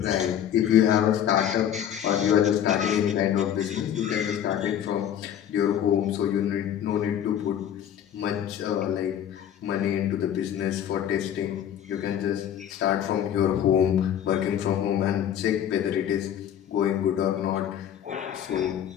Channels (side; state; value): right; quieter; 9.9 dB